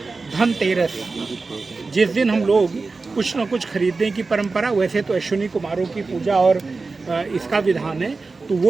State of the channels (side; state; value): left; quieter; 4.0 dB